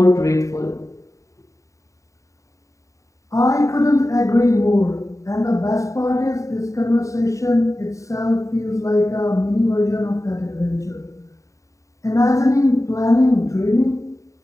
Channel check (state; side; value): late; right; 0.16 ms